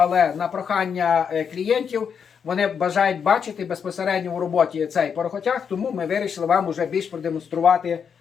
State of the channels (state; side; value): quieter; right; 6.9 dB